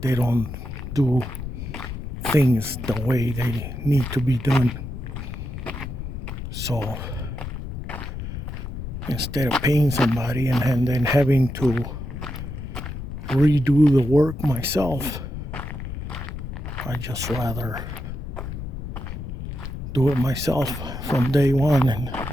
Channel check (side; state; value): left; noise; rumble, 7 dB below the sound